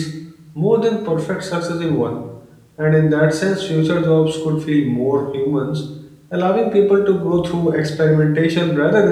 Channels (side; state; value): both; identical; correlation 1.00